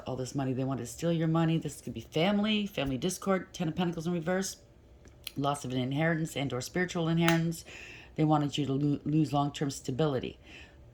all this money. They want to steal your money. This could be family discord, Ten of Pentacles in reverse, loss of an inheritance and or spiritual inheritance. They wanted you to lose long-term stability.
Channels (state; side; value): identical; both; correlation 1.00